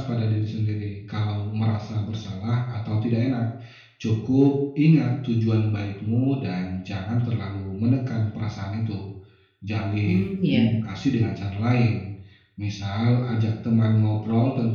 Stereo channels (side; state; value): both; identical; correlation 1.00